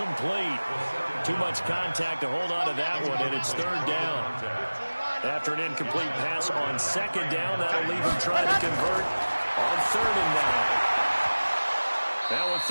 Too much contact to hold on to that one, and it's third down. After an incomplete pass on second down, that'll leave him trying to convert on third and 9. Now a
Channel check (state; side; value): inverted; both; correlation -1.00